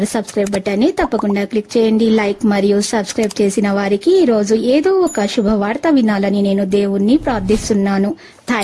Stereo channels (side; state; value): both; identical; correlation 1.00